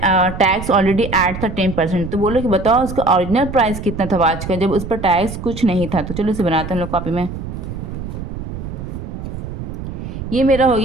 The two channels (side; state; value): right; noise; rumble, 8 dB below the sound